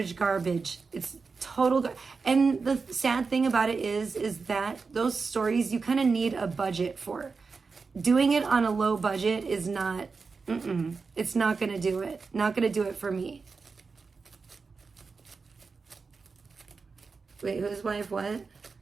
It's total and the sad thing about it is that those stories you kind of need a budget for. Doing it on a low budget is not, it's not going to do it. Not going to do it for me. Wait, whose wife what?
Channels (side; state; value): left; quieter; 4.7 dB